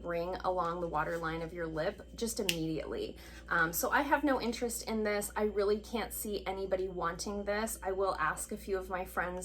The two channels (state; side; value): identical; both; correlation 1.00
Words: ring along the waterline of your lip just immediately. So I have no interest in this. I really can't see anybody wanting this. I will ask a few of my